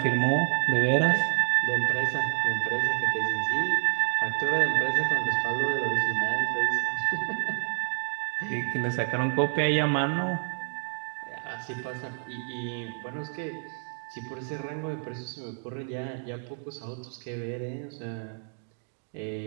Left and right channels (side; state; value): left; silent; digital silence